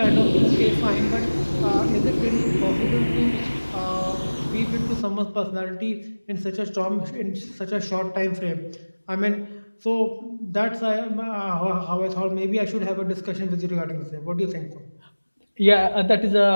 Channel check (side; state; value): both; inverted; correlation -1.00